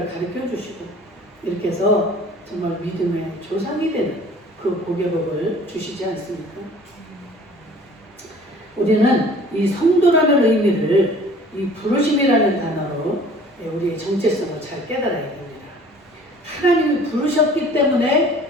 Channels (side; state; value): both; normal; correlation 0.49